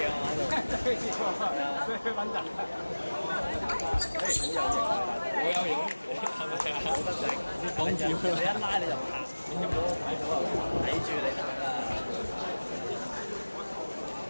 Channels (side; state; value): both; inverted; correlation -1.00